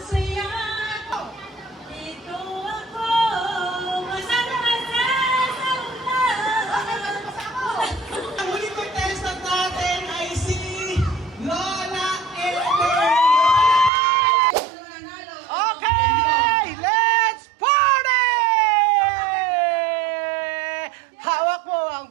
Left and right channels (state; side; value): drops out; left; at 13.9 s